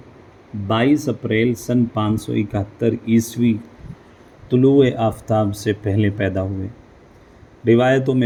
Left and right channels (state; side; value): identical; both; correlation 1.00